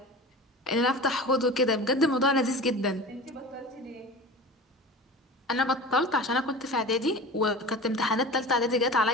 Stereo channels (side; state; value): both; normal; correlation 0.34